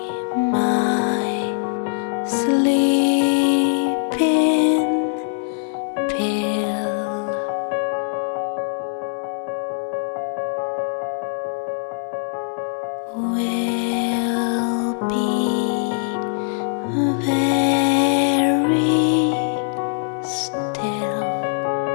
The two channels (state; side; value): silent; right; 61 dB below the other